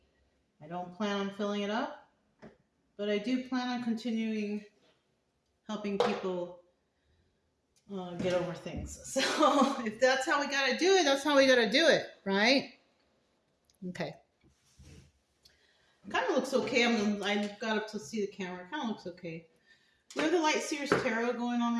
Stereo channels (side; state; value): both; identical; correlation 1.00